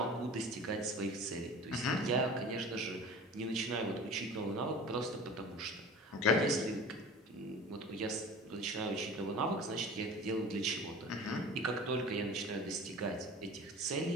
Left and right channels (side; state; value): both; normal; correlation 0.39